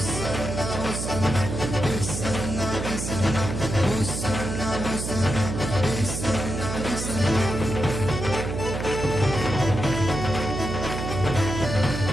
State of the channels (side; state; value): right; noise; hum, 4 dB below the sound